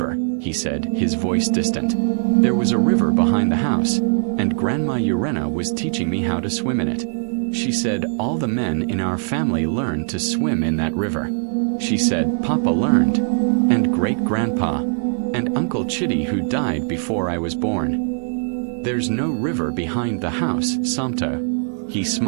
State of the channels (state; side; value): silent; left; digital silence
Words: he said, his voice distant. "There was a river behind the house, and Grandma Urenna was teaching me how to swim in it. She said all the men in our family learned to swim in that river. She said Papa learned, and Great-Grandpa, and Uncle Chitty who died before I was born. There's no river behind the house, Santo." He